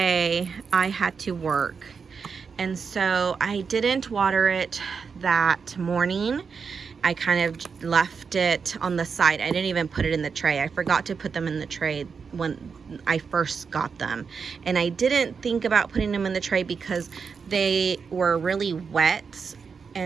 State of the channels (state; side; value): quieter; left; 5.7 dB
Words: I had to work, and so I didn't water it that morning. I kind of left it on the side. I didn't even put it in the tray. I forgot to put them in the tray when I first got them, and I didn't think about putting them in the tray because they were really wet.